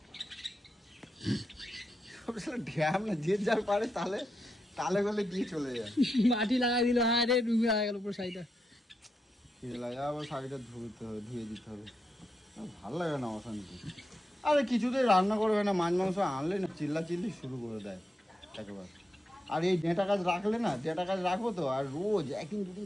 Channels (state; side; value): normal; both; correlation 0.85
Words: ঢ্যাম না, যে যার পারে তালে গলে দিয়ে চলে যায়। মাটি লাগাই দিল, হ্যাঁ রে ডুবে গেল পুরো শাড়িটা। আবার শাড়িটা ধুয়ে দিতে হবে। ভালো লাগে না অশান্তি। আরে কিছুতেই রান্না করবে না, মাছ মাংস আনলে না চিল্লি শুরু করে দেয় একেবারে। আর এই ডেঁটা গাছ রাখবো তো, আর রোজ একদিন দুদিন